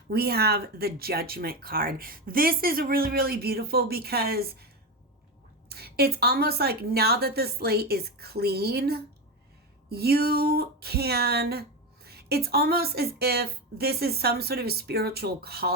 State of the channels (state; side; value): normal; both; correlation 0.16